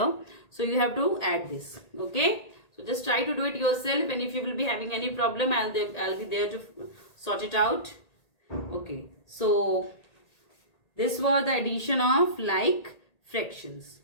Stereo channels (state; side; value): late; right; 1.8 ms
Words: so you have to add this. Okay, so just try to do it yourself, and if you will be having any problem, I'll be there to sort it out. Okay, so this was the addition of like fractions.